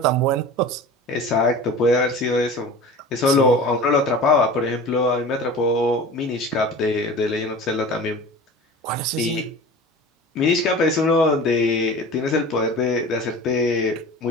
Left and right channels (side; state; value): both; normal; correlation 0.37